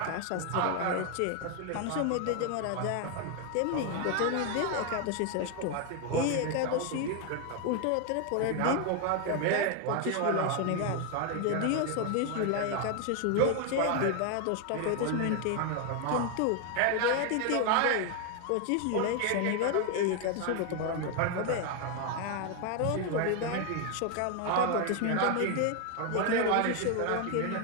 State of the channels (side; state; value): both; different; correlation 0.01